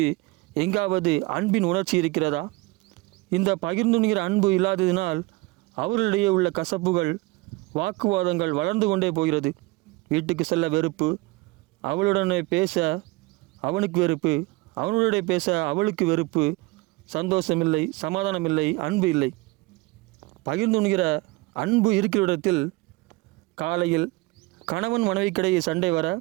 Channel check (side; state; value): left; quieter; 22.5 dB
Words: எங்காவது அன்பின் உணர்ச்சி இருக்கிறதா? இந்த பகிர்ந்துண்கிற அன்பு இல்லாததினால் அவர்களிடையே உள்ள கசப்புகள், வாக்குவாதங்கள் வளர்ந்து கொண்டே போகிறது. வீட்டுக்கு செல்ல வெறுப்பு, அவளுடனே பேச அவனுக்கு வெறுப்பு, அவனுடைய பேச அவளுக்கு வெறுப்பு, சந்தோஷமில்லை, சமாதானமில்லை, அன்பு இல்லை. பகிர்ந்துண்கிற அன்பு இருக்கிற இடத்தில் காலையில் கணவன் மனைவிக்கிடையே சண்டை வர,